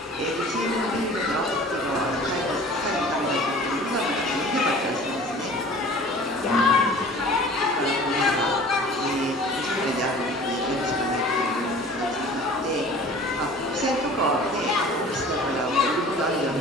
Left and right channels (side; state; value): both; normal; correlation 0.45